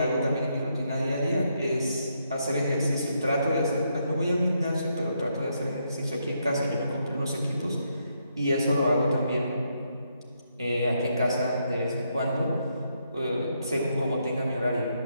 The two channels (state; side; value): inverted; both; correlation -0.78